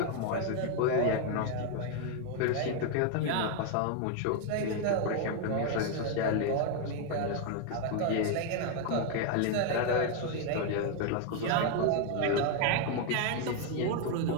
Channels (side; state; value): both; different; correlation 0.01